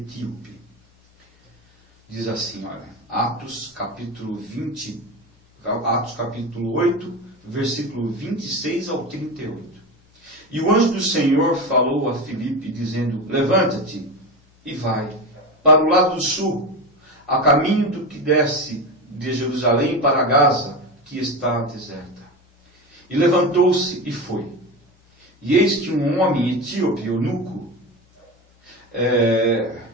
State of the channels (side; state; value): both; normal; correlation 0.22